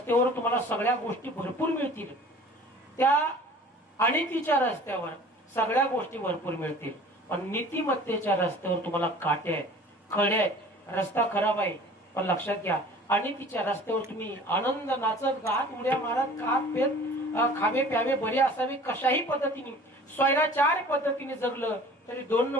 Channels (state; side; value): normal; both; correlation 0.46